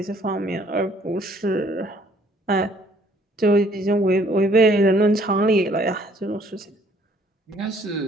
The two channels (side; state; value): both; normal; correlation 0.61